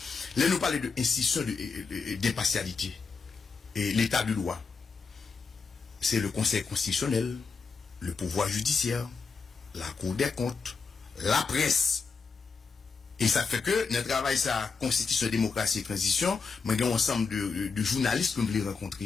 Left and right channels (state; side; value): quieter; right; 4.9 dB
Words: Là nous parler de institution d'impartialité et l'état de loi. C'est le Conseil constitutionnel, le pouvoir judiciaire, la Cour des comptes, la presse. Et ça fait que notre travail ça constitution démocratie et transition, mais il y a un ensemble de journalistes que nous voulons